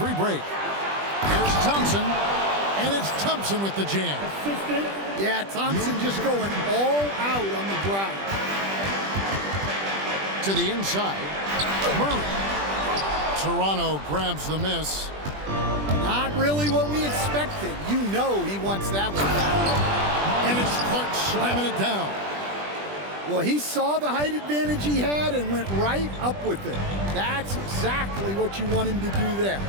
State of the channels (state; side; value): late; left; 20 ms